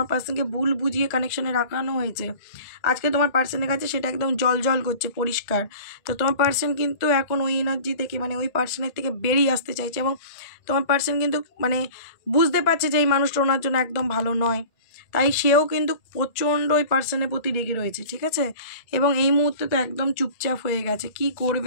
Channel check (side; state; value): right; late; 1.8 ms